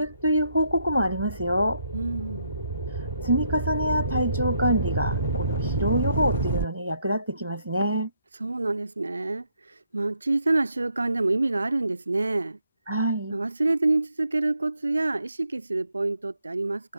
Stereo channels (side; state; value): both; inverted; correlation -0.75